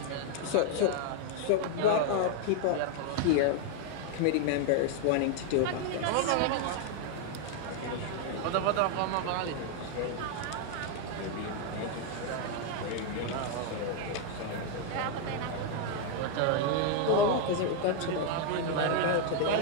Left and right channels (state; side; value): different; both; correlation 0.00